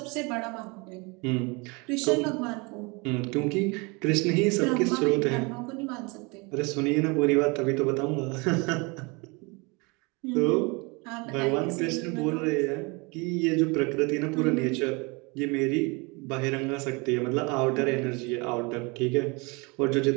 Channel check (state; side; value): quieter; left; 28.4 dB